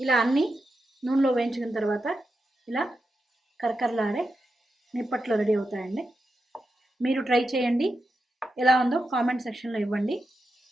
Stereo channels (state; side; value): normal; both; correlation 0.88